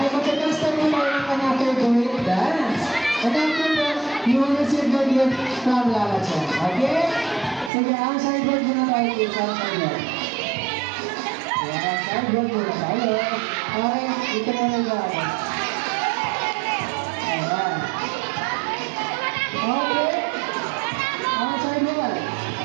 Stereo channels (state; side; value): drops out; left; at 7.7 s